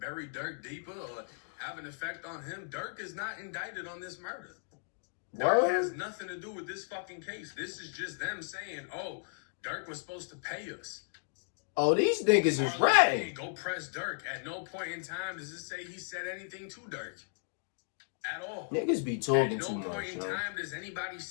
Durk deeper or have an effect on him. Durk is not indicted on this murder. Durk has nothing to do with this fucking case. This is just them saying, oh, Durk was supposed to pay us. Oh, these niggas is ratting. Go press Durk. At no point in time does it say he said anything to Durk. At all. Niggas be talking too much. At no point in time does anybody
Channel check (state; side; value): silent; right; digital silence